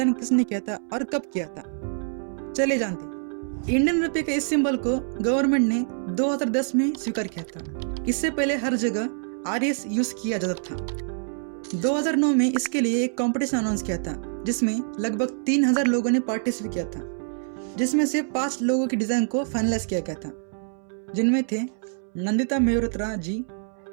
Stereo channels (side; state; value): left; silent; 61 dB below the other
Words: किसने किया था और कब किया था? चलिए जानते हैं। इंडियन रुपये के इस सिंबल को गवर्नमेंट ने 2010 में स्वीकार किया था। इससे पहले हर जगह आरएस यूज किया जाता था। 2009 में इसके लिए एक कंपटीशन अनाउंस किया था जिसमें लगभग 3000 लोगों ने पार्टिसिपेट किया था, जिसमें से 5 लोगों की डिजाइन को फाइनलाइज किया गया था, जिनमें थे नंदिता मेहरोत्रा जी,